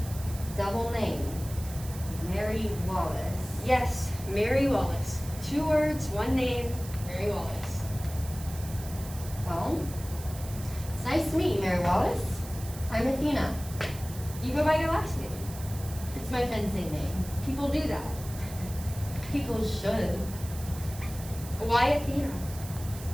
Double name. Mary Wallace. Yes, Mary Wallace. 2 words, 1 name, Mary Wallace. Well, it's nice to meet you, Mary Wallace. I'm Athena. You go by your last name. It's my fencing name. People do that. People should. Why Athena?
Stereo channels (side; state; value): right; noise; hiss, 14 dB below the sound